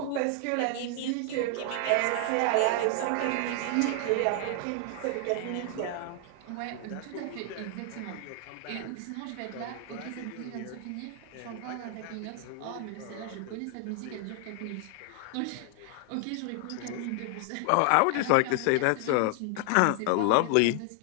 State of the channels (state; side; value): different; both; correlation 0.00